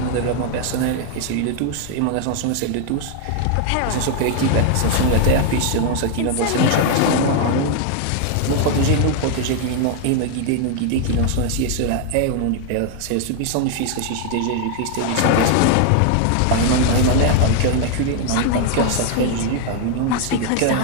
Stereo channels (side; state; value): both; different; correlation 0.00